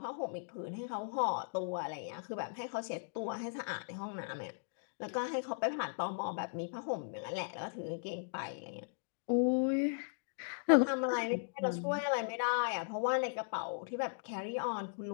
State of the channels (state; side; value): silent; right; digital silence